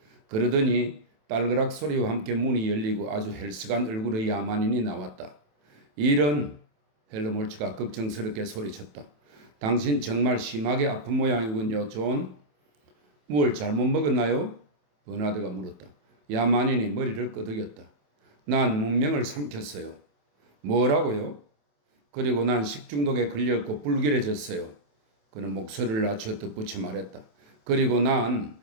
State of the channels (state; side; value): late; left; 27 ms